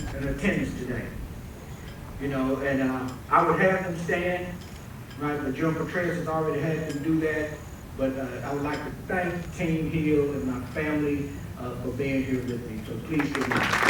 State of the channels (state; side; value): identical; both; correlation 1.00